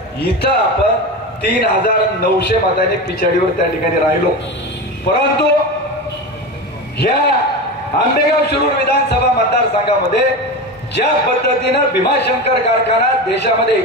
इथं आपण 3900 मतांनी पिछाडीवर त्या ठिकाणी राहिलो. परंतु ह्या आंबेगाव शिरूर विधानसभा मतदारसंघामध्ये ज्या पद्धतीनं भीमाशंकर कारखाना देशामध्ये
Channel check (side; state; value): both; normal; correlation 0.24